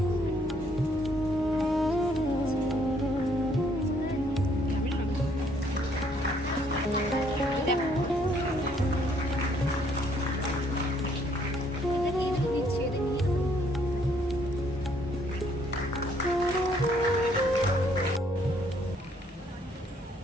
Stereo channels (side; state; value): both; normal; correlation 0.66